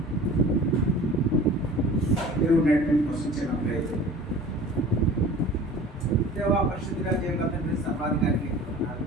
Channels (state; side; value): normal; both; correlation 0.43